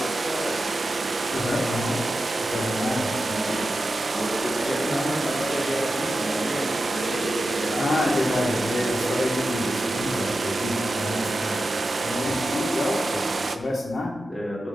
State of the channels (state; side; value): normal; both; correlation 0.91